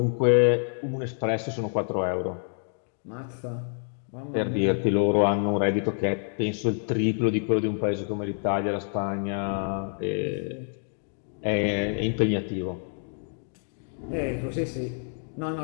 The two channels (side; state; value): right; silent; digital silence